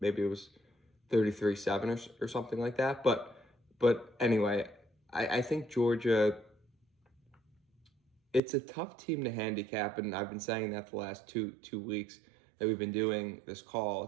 maybe it was 33-7 or something like that. But anyway, I think Georgia, it's a tough team to handicap, and I've been saying that the last two weeks that we've been doing this call.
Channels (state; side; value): drops out; left; at 8.4 s